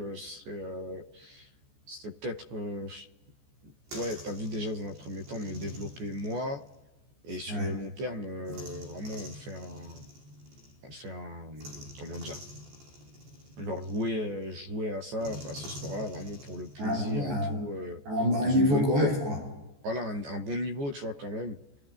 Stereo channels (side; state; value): left; late; 14 ms